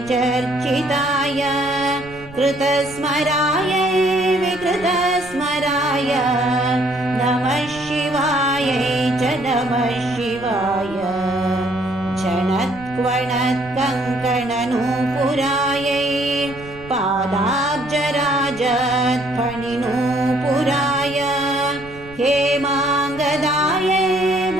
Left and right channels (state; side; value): noise; right; rumble, 19 dB below the sound